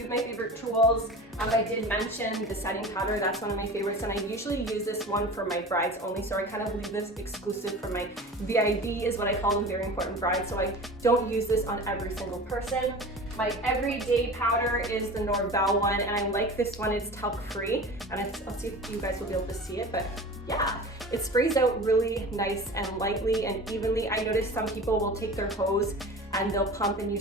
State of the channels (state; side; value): normal; both; correlation 0.36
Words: of my favorite tools. I did mention the setting powder. That's one of my favorites, and I usually use this one for my brides only, so I kind of leave this exclusive for my VIB, is what I call them, very important brides, so I don't use this on every single person. My everyday powder is the Norvell one, and I like this one. It's talc free, and I'll see if you guys will be able to see it, but yeah, it sprays out really nice and lightly and evenly. I notice some people will take their hose and they'll pump and